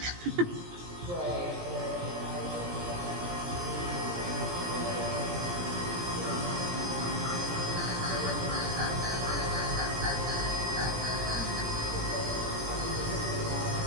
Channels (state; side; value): late; left; 17 ms